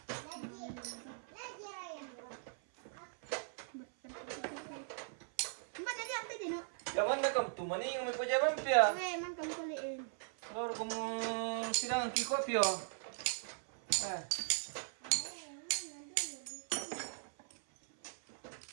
Jangan nak kamu tu mana yang mau jalan pia? Oke, man kamu kuliin. Kalau kamu sidang kiko pia.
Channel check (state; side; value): silent; left; 51 dB below the other